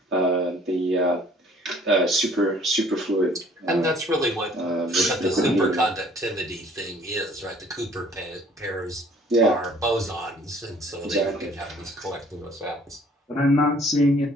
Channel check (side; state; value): both; normal; correlation 0.56